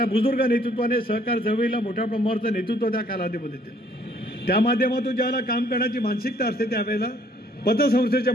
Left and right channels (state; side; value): normal; both; correlation 0.62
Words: बुजुर्ग नेतृत्वाने सहकार चळवळीला मोठ्या प्रमाणाचं नेतृत्व त्या कालावधीमध्ये दिलं. त्या माध्यमातून ज्यावेळेला काम करण्याची मानसिकता असते त्यावेळेला पतसंस्थेच्या